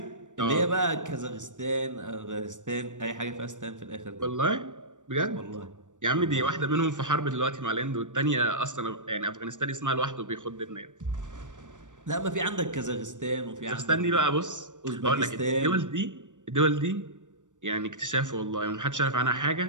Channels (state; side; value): late; left; 0.86 ms